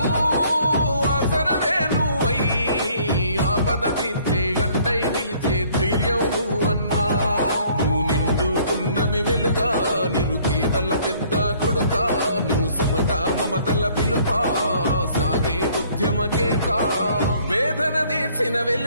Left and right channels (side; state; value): both; inverted; correlation -0.60